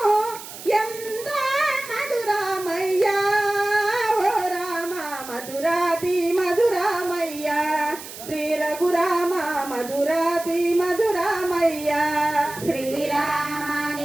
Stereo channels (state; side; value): noise; right; hiss, 13 dB below the sound